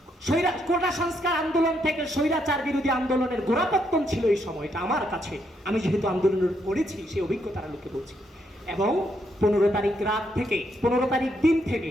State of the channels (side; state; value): both; normal; correlation 0.76